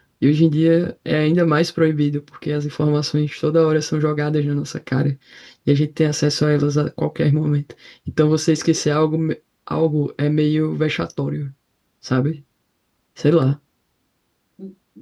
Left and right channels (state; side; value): identical; both; correlation 1.00